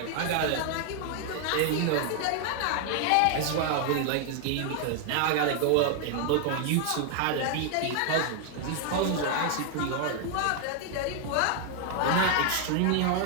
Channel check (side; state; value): both; different; correlation 0.00